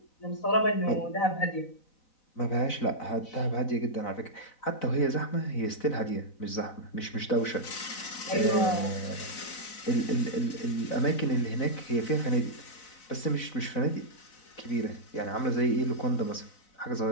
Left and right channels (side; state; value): right; late; 4.0 ms